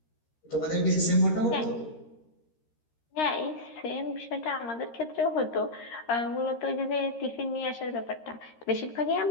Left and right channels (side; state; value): right; late; 13 ms